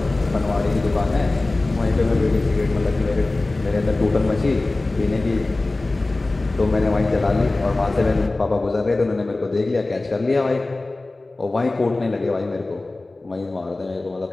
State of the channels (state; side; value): quieter; right; 3.1 dB